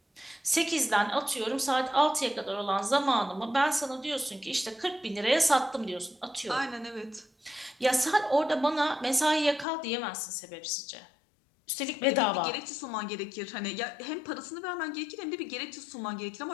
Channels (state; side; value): drops out; right; at 9.7 s